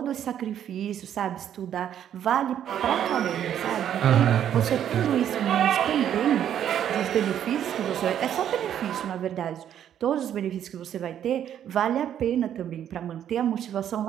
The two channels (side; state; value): left; quieter; 10.0 dB